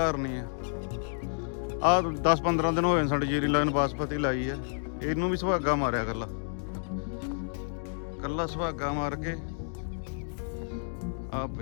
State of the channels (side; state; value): right; silent; digital silence